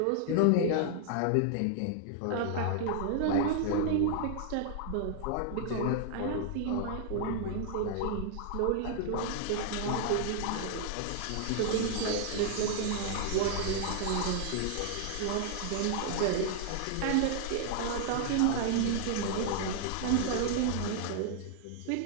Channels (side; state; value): both; different; correlation 0.00